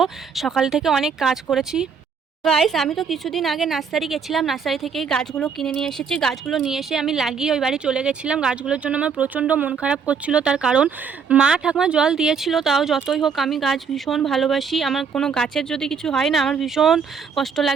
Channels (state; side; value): quieter; left; 6.1 dB